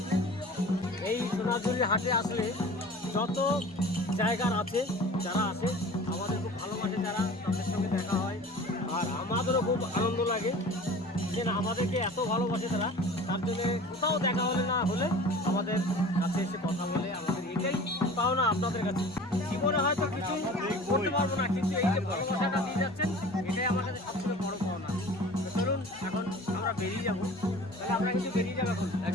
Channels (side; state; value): both; normal; correlation 0.42